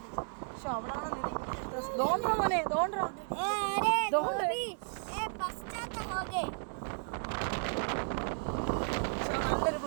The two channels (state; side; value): silent; left; 55 dB below the other